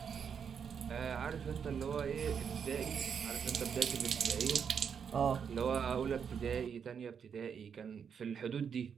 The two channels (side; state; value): left; quieter; 7.1 dB